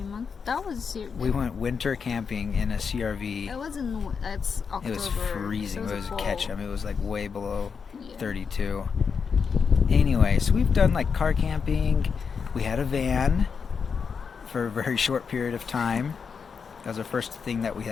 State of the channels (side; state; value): right; quieter; 6.0 dB